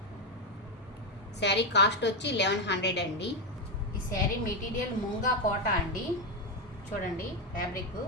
శారీ కాస్ట్ వచ్చి 1100 అండి. ఈ శారీ మెటీరియల్ ముంగా కోట అండి. చూడండి ఫ్యాబ్రిక్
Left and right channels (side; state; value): both; normal; correlation 0.07